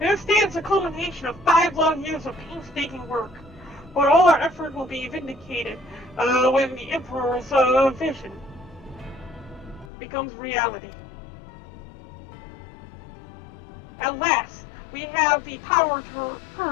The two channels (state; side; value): drops out; right; at 9.9 s